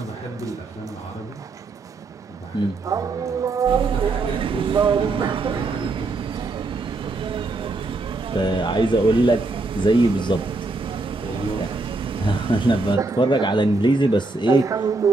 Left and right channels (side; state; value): left; quieter; 3.3 dB